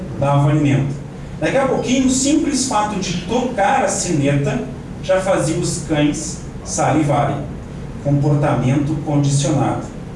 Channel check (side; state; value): both; identical; correlation 1.00